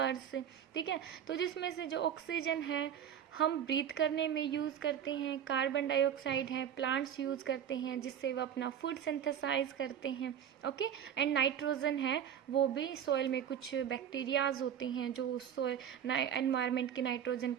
ठीक है, तो जिसमें से जो ऑक्सीजन है हम ब्रीथ करने में यूज़ करते हैं, कार्बन डाइऑक्साइड है प्लांट्स यूज़ करते हैं जिससे वो अपना फूड सिंथेसाइज करते हैं. ओके, एंड नाइट्रोजन है वो भी सॉइल में कुछ बैक्टीरियाज होते हैं जो सॉइल एनवायरनमेंट के नाइट्रोजन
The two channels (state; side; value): quieter; left; 9.2 dB